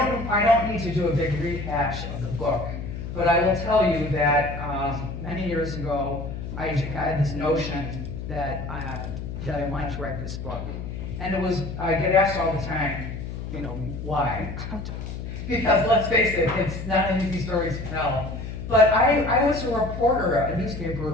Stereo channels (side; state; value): left; noise; hum, 7 dB below the sound